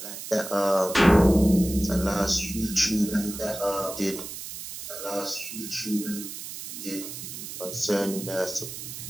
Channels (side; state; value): right; noise; hiss, 9 dB below the sound